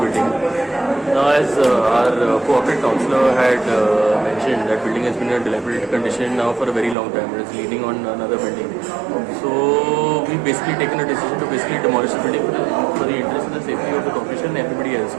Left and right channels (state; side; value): drops out; left; at 7.0 s